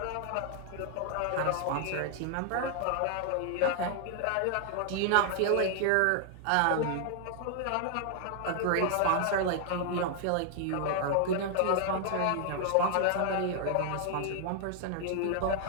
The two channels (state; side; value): different; both; correlation 0.00